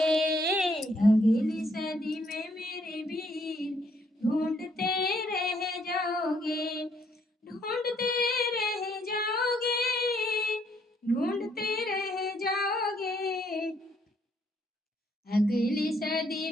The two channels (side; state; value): both; normal; correlation 0.69